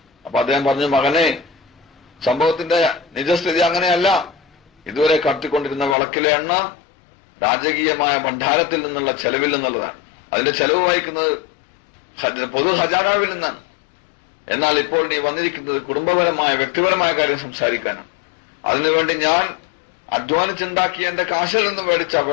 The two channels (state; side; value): drops out; right; at 6.0 s